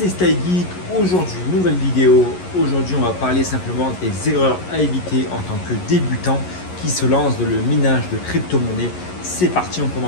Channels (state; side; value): late; right; 11 ms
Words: StyleGeek. Aujourd'hui, nouvelle vidéo. Aujourd'hui, on va parler simplement des erreurs à éviter en tant que débutant qui se lance dans le minage de crypto-monnaies. C'est parti, on